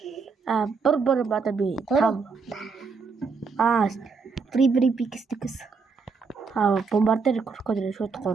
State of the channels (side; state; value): left; quieter; 4.9 dB